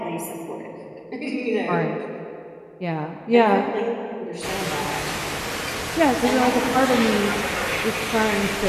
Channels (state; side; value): identical; both; correlation 1.00